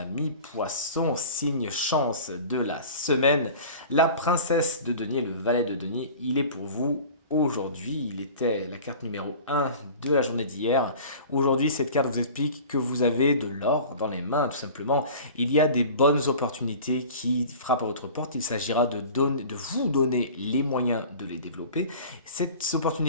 poissons, signe chance de la semaine, la princesse de denier, le valet de denier, il est pour vous aujourd'hui. Il était la carte numéro 1 de la journée d'hier. Aujourd'hui, cette carte vous explique que vous avez de l'or dans les mains, tout simplement. Il y a des bonnes opportunités qui frappent à votre porte. Il s'agira de vous donner les moyens de les développer. Cette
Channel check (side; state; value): both; inverted; correlation -0.40